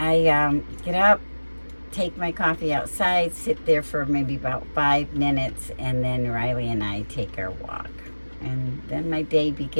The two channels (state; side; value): inverted; both; correlation -1.00